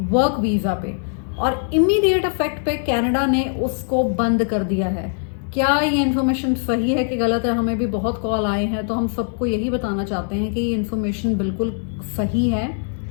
वर्क वीज़ा पे, और इमीडिएट इफेक्ट पे कनाडा ने उसको बंद कर दिया है। क्या ये इन्फॉर्मेशन सही है कि गलत है? हमें भी बहुत कॉल आए हैं, तो हम सबको यही बताना चाहते हैं कि ये इन्फॉर्मेशन बिल्कुल सही है।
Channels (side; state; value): right; silent; 65 dB below the other